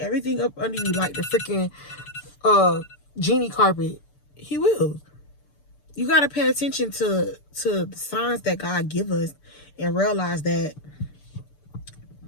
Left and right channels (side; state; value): right; late; 6.8 ms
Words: up under you like the freaking genie carpet. He will. You got to pay attention to the signs that God give us, and realize that